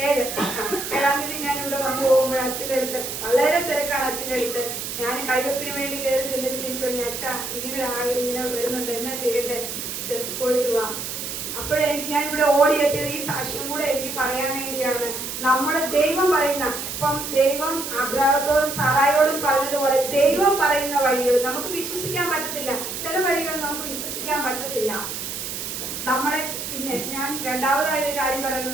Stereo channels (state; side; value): noise; right; hiss, 6 dB below the sound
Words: 7-ാം തീയതി ഞാൻ ഇവിടെ വന്നു പോകുമ്പോൾ അച്ഛൻ്റെ അടുത്ത് വളരെ തിരക്കാണ്. അച്ഛൻ്റെ അടുത്ത് ഞാൻ കൈവെപ്പിന് വേണ്ടി കയറി ചെന്നിട്ട് തിരിച്ചു പറഞ്ഞു, അച്ഛ ഇങ്ങനെ വരുന്നുണ്ട്, എന്നാ ചെയ്യട്ടെ, പോയിട്ട് വാ. അപ്പോഴെനിക്ക് ഞാൻ ഇവിടെ ഓടിയെത്തിയത് ഈ സാക്ഷ്യം കൂടെ എനിക്ക് പറയാൻ വേണ്ടിയാണ്. നമ്മുടെ ദൈവം പറയുന്ന, ഇപ്പം ദൈവം അബ്രാഹത്തോടും സാറായോടും പറഞ്ഞതുപോലെ ദൈവം പറയുന്ന വഴികൾ നമുക്ക് വിശ്വസിക്കാൻ പറ്റത്തില്ല. ചില വഴികൾ നമുക്ക് വിശ്വസിക്കാൻ പറ്റത്തില്ല. നമ്മളെ പിന്നെ ഞാൻ രണ്ടാമതായ ഒരു കാര്യം